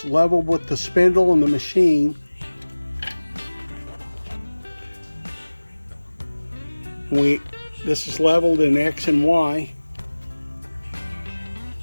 level with the spindle and the machine. This is leveled in X and Y.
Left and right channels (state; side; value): inverted; both; correlation -1.00